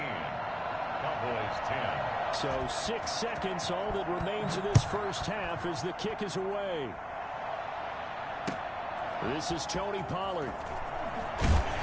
Cowboys 10. So 6 seconds, all that remains of this 1st half as the kick is away. This is Tony Pollard.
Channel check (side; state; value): both; identical; correlation 1.00